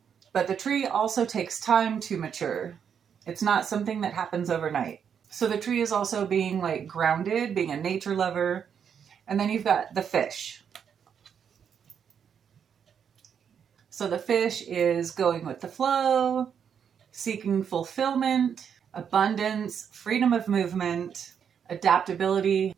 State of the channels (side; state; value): left; quieter; 7.7 dB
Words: But the tree also takes time to mature. It's not something that happens overnight. So the tree is also being like grounded, being a nature lover. And then you've got the fish. So the fish is going with the flow, seeking fulfillment, abundance, freedom of movement, adaptability.